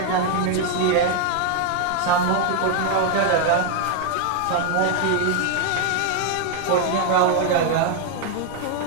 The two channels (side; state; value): both; different; correlation 0.00